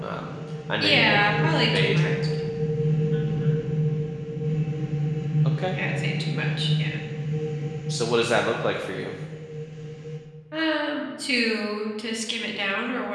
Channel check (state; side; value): identical; both; correlation 1.00